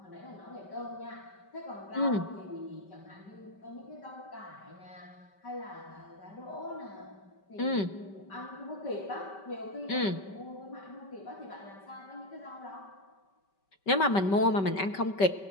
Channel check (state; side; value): late; right; 5.2 ms